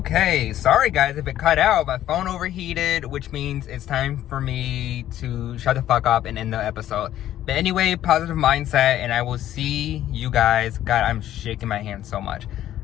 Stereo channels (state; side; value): quieter; right; 12.4 dB